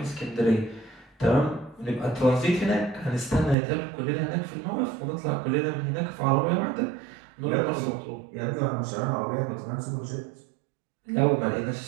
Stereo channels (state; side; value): drops out; left; at 3.6 s